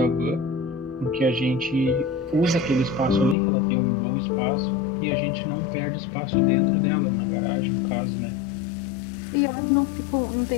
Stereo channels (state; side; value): drops out; right; at 3.4 s